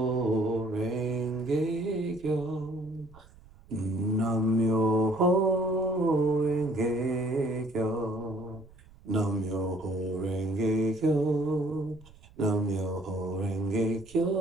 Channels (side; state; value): right; noise; rumble, 24 dB below the sound